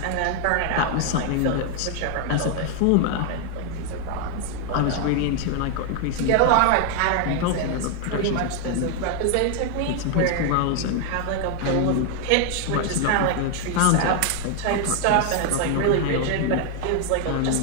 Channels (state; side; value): different; both; correlation 0.00